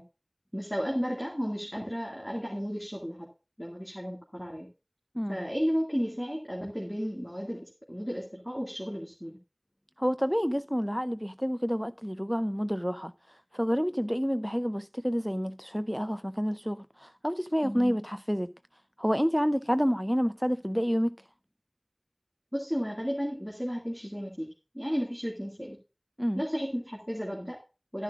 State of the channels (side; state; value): both; identical; correlation 1.00